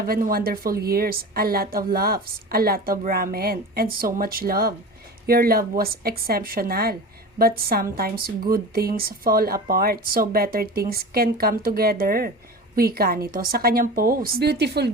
wonderful years, a lot of laughs, a lot of ramen, and so much love. Your love was exceptional, but sometimes good things fall apart so better things can come together. Wika nito sa kanyang post. Beautiful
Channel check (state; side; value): normal; both; correlation 0.32